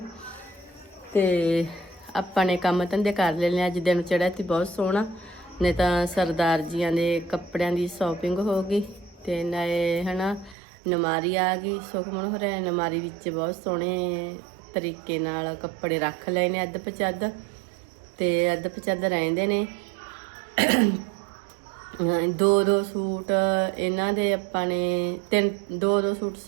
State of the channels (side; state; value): left; drops out; at 10.6 s